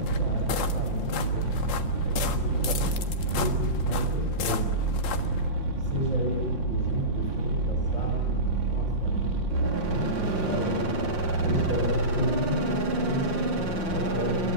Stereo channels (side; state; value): right; late; 5.7 ms